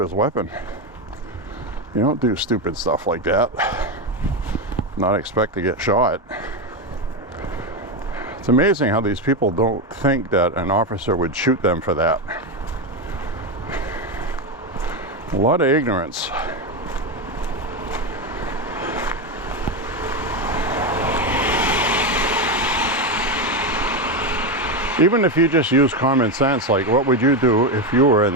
weapon. You don't do stupid stuff like that, not expect to get shot. It's amazing how these people don't think that an officer would shoot them for that. A lot of ignorance. Even if you just use common sense, like what would you do if you were in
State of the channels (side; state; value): both; normal; correlation 0.12